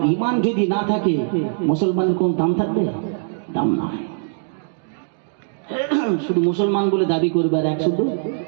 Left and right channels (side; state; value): left; silent; digital silence